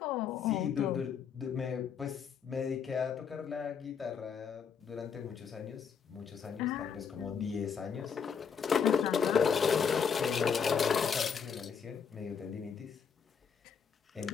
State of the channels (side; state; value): right; quieter; 6.7 dB